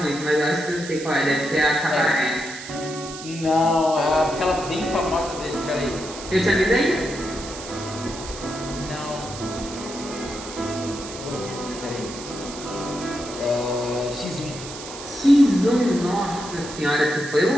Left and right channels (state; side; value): noise; right; hiss, 12 dB below the sound